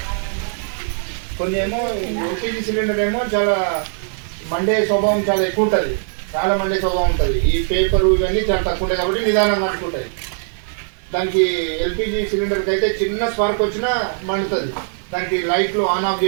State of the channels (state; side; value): silent; left; digital silence